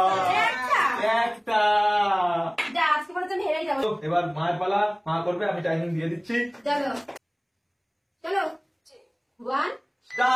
একটা আজকে পরে তুমি হেরেই যাবো। এবার মায়ের পালা, মা করবে, আমি টাইমিং দিয়ে দিচ্ছি। চলো চলো 1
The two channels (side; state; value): both; identical; correlation 1.00